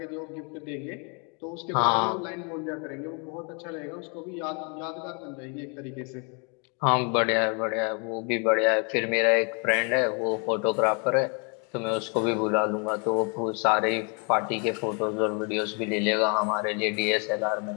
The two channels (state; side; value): quieter; right; 35.9 dB